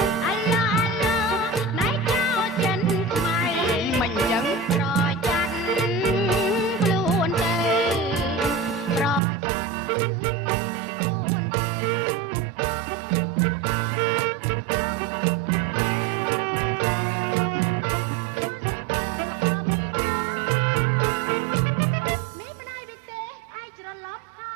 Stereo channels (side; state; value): left; drops out; at 9.2 s